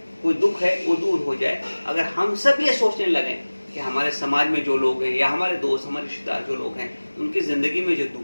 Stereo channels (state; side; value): inverted; both; correlation -1.00